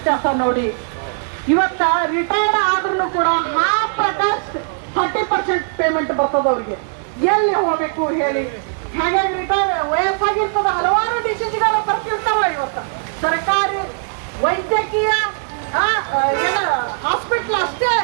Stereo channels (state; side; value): silent; left; digital silence